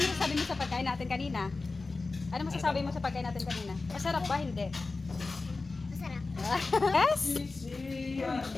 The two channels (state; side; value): quieter; right; 3.7 dB